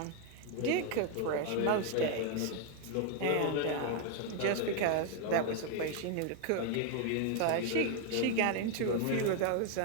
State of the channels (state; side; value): different; both; correlation 0.01